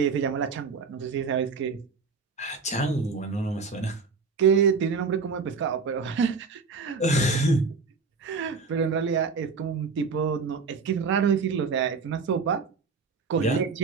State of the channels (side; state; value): left; quieter; 4.8 dB